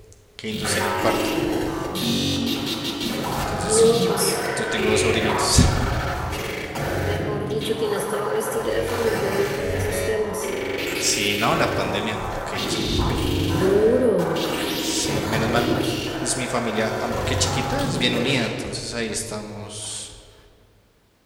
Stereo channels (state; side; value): identical; both; correlation 1.00